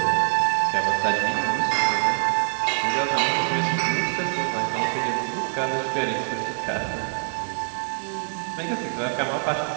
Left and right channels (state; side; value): silent; left; digital silence